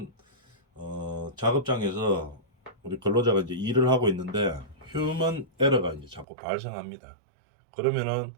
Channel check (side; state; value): left; drops out; at 6.2 s